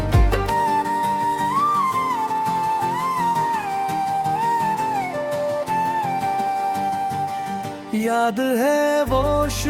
याद है वो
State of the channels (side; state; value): both; identical; correlation 1.00